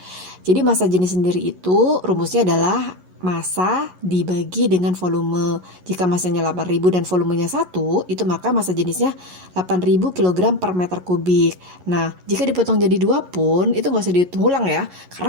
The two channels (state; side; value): late; left; 11 ms